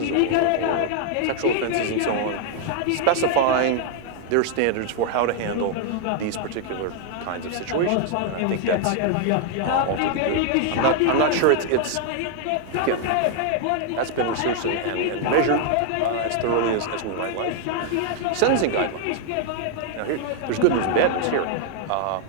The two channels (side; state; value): both; different; correlation 0.00